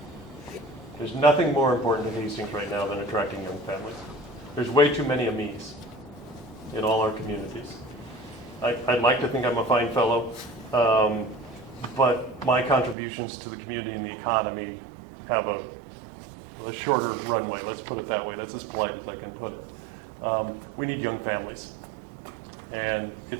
There's nothing more important to Hastings right now than attracting young families. There's way too many Amis in all our communities. I'd like to think I'm a fine fellow, but my contributions to the community and the economy have a shorter runway, let's put it that way. That's as polite as I can put it. We need young families. And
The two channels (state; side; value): drops out; left; at 13.0 s